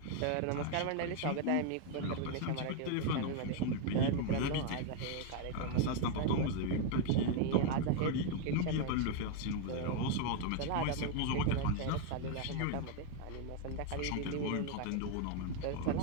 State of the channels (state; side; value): different; both; correlation 0.01